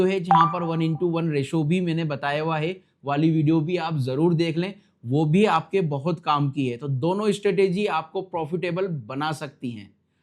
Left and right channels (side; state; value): both; identical; correlation 1.00